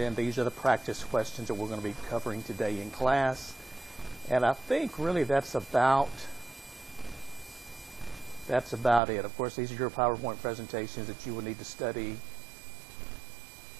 these are the practice questions that we're going to be covering today in class. And I think really that's about it. Of course, these are your PowerPoint presentations that you will need to study.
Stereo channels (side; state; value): left; drops out; at 9.0 s